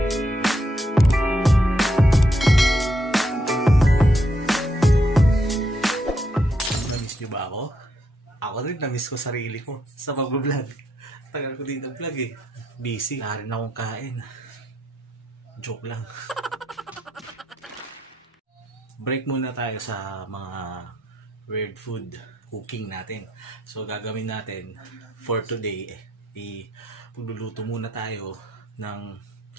Namiss niyo ba ako? Ako rin namiss ko sarili ko sa pag-vlog. Tagal ko dito vlog eh. Busy. Wala rin akong kain. Joke lang. Break muna tayo sa mga weird food cooking natin. So gagawin natin for today, pagluluto muna tayo ng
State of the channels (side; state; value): both; normal; correlation 0.77